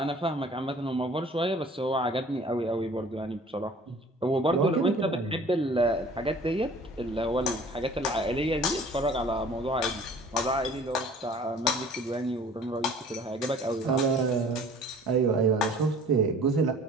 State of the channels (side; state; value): both; normal; correlation 0.49